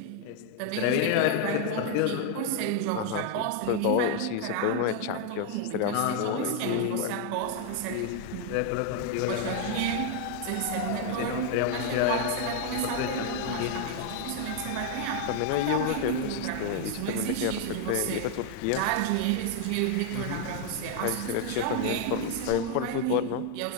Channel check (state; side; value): different; both; correlation 0.01